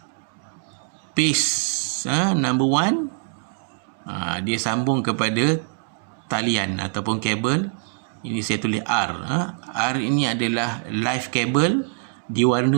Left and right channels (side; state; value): left; silent; 63 dB below the other